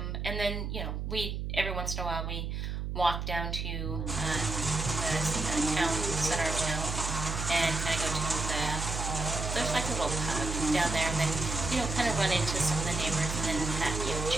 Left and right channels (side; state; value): right; noise; hum, 3 dB below the sound